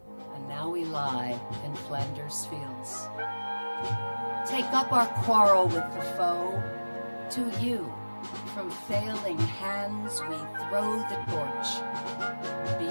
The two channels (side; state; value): both; inverted; correlation -1.00